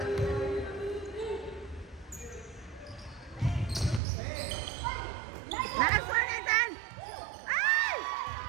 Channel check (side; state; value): left; drops out; at 4.0 s